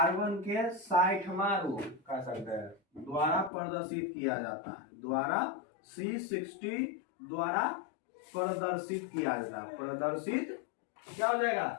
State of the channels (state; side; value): drops out; right; at 3.5 s